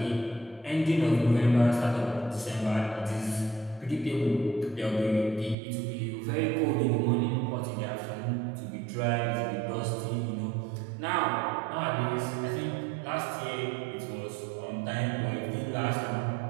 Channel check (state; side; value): drops out; left; at 5.6 s